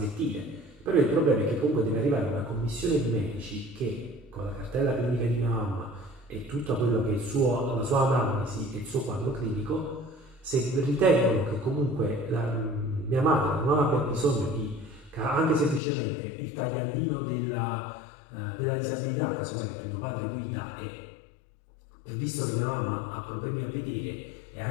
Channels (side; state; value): right; drops out; at 15.8 s